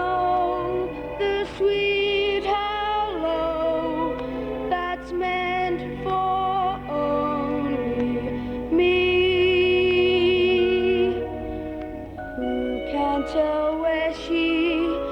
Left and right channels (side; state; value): both; identical; correlation 1.00